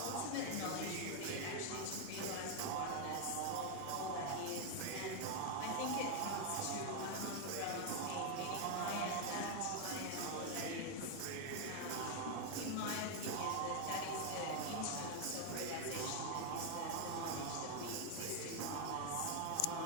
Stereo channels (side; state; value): both; different; correlation 0.01